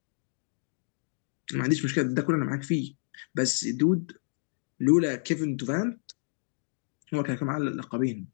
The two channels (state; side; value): silent; right; 58 dB below the other